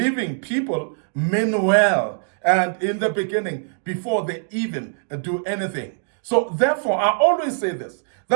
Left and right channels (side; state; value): left; silent; digital silence